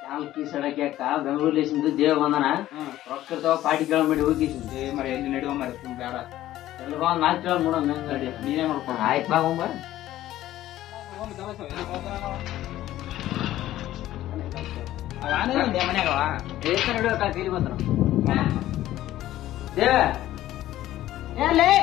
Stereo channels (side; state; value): right; quieter; 14.1 dB